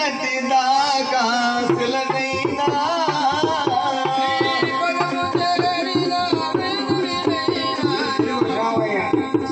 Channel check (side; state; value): both; identical; correlation 1.00